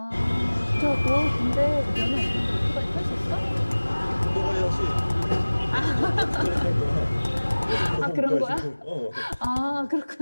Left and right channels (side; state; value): both; inverted; correlation -1.00